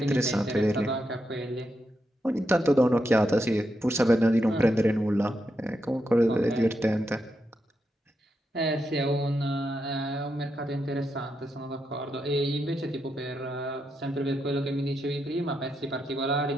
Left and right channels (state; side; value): normal; both; correlation 0.84